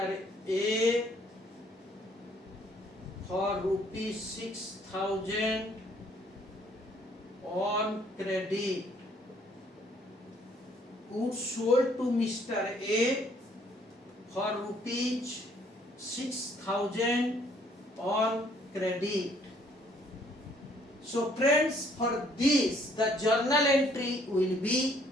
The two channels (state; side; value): normal; both; correlation 0.63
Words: A for rupees 6,000 on credit. Goods sold to Mr. A for rupees 6,000 on credit. So friends, for this the journal entry will be